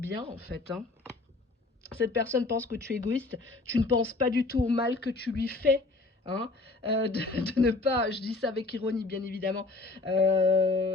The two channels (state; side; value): quieter; right; 3.3 dB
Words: en fait, hein. Cette personne pense que tu es égoïste, tu ne penses pas du tout au mal que tu lui fais. Hein, de ne pas, je dis ça avec ironie bien évidemment,